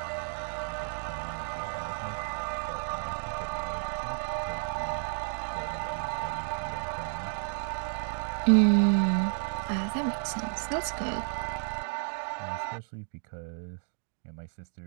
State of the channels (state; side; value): silent; left; 57 dB below the other